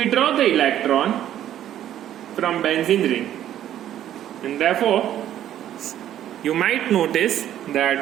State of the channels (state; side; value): quieter; left; 11.5 dB